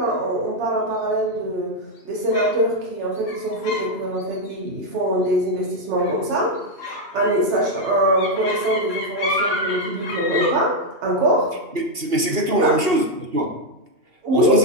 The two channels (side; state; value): left; late; 2.8 ms